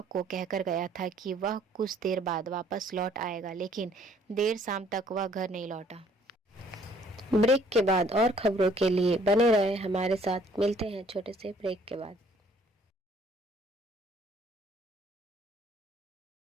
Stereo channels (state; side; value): normal; both; correlation 0.60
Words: को कहकर गया था कि वह कुछ देर बाद वापस लौट आएगा, लेकिन देर शाम तक वह घर नहीं लौटा। ब्रेक के बाद और खबरों के लिए बने रहे हमारे साथ। मिलते हैं छोटे से ब्रेक के बाद।